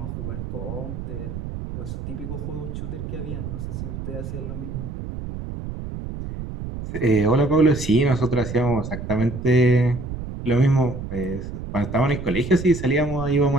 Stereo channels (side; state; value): right; noise; rumble, 7 dB below the sound